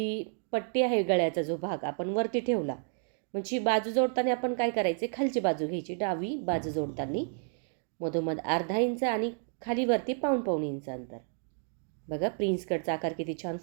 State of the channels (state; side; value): silent; left; 57 dB below the other